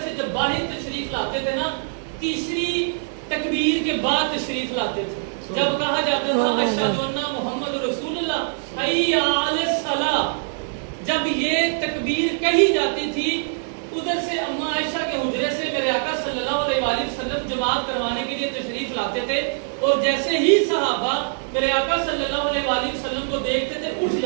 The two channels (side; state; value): left; silent; 63 dB below the other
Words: سے جب باہر تشریف لاتے تھے نا, تیسری تکبیر کے بعد تشریف لاتے تھے. جب کہا جاتا تھا اشہد ان محمد رسول اللہ, حی علی الصلاۃ, جب یہ تکبیر کہی جاتی تھی, ادھر سے اما عائشہ کے حجرے سے میرے آقا صلی اللہ علیہ وآلہ وسلم جماعت کروانے کے لیے تشریف لاتے تھے, اور جیسے ہی صحابہ میرے آقا صلی اللہ علیہ وآلہ وسلم کو دیکھتے تھے اٹھ